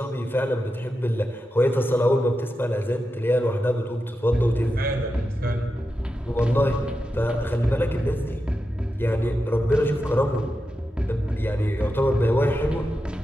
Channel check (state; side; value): normal; both; correlation 0.89